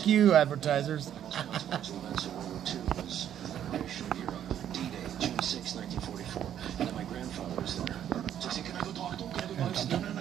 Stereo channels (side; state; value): left; quieter; 10.2 dB